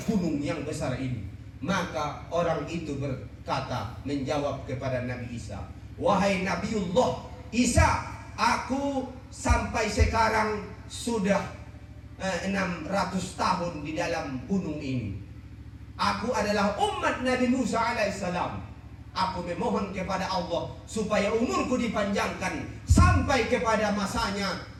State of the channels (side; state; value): both; identical; correlation 1.00